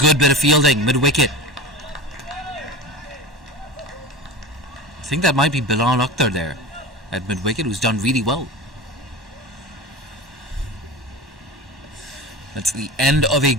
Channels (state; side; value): normal; both; correlation 0.30